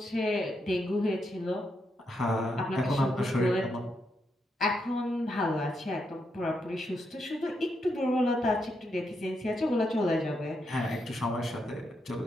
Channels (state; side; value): normal; both; correlation 0.81